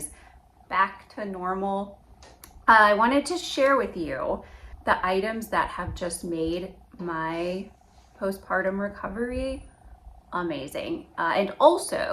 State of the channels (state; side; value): identical; both; correlation 1.00